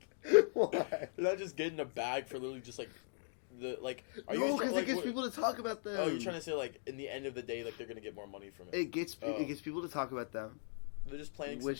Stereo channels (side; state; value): right; silent; digital silence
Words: Why? You're not just getting a bag for literally just like the like. Are No, you because like, it gets what- people to talk about them. Oh, you're trying to say like in the end of the day, like they're gonna get more money from it. It gets Oh. it gets people to talk about them. They're just planting Which-